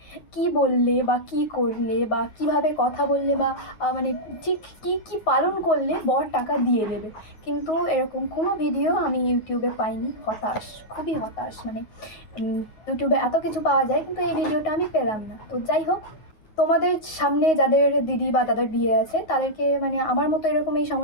কি বললে বা কি করলে বা কিভাবে কথা বললে বা মানে ঠিক কী কী পালন করলে বর টাকা দিয়ে দেবে। কিন্তু এরকম কোনো ভিডিও আমি ইউটিউবে পাইনি। হতাশ, খুবই হতাশ। মানে ইউটিউবে এত কিছু পাওয়া যায়, কিন্তু এই ভিডিওটা আমি পেলাম না। তো যাই হোক, তোমাদের সামনে যাদের দিদি বা দাদার বিয়ে আছে তাদেরকে মানে আমার মতো এরকম এই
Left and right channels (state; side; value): late; right; 9.4 ms